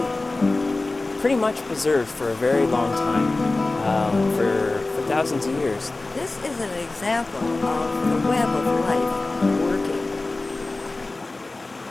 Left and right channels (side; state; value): right; quieter; 3.2 dB